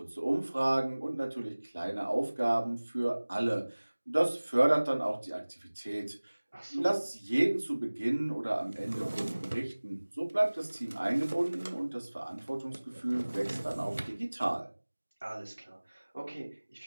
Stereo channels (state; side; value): inverted; both; correlation -1.00